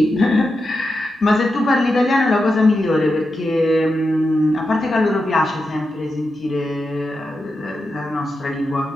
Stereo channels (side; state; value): both; normal; correlation 0.88